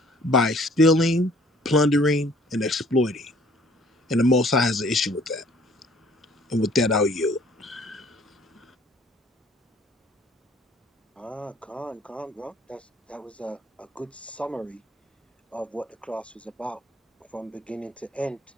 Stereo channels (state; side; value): normal; both; correlation 0.57